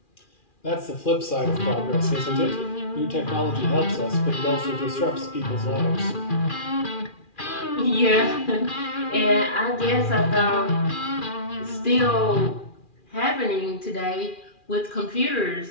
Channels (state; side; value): late; right; 2.4 ms